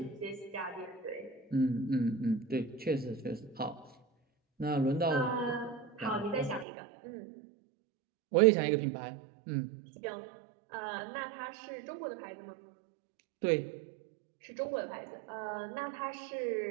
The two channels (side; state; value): left; drops out; at 6.7 s